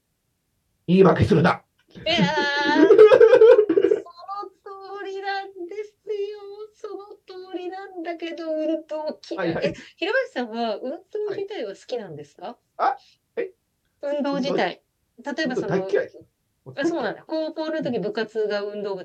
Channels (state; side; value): identical; both; correlation 1.00